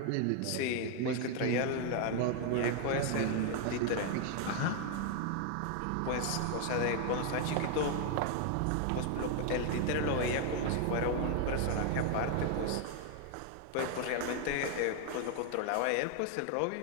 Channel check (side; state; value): both; different; correlation 0.00